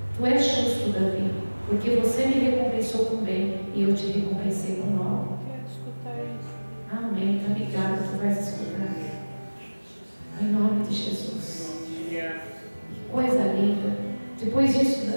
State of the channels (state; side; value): inverted; both; correlation -1.00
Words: tu és justo, Davi, porque você me recompensou com bem e eu te recompensei com mal. Quero escutar isso. Amém, tá ligado, tu vais escutar. Em nome de Jesus. Que coisa linda. Depois disso,